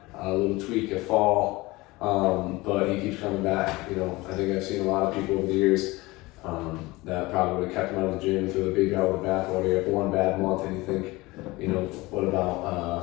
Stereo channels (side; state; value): right; quieter; 21.5 dB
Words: a little tweak at fall, but he keeps coming back. I think I've seen a lot of people over the years That probably would have kept him out of the gym, threw the baby out of the bathwater. You have one bad month and you think, you know, what